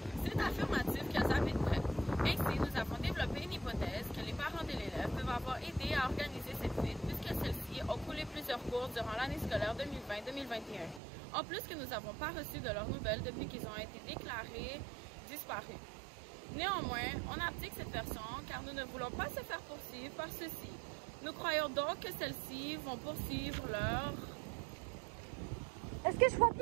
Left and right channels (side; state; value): left; drops out; at 11.0 s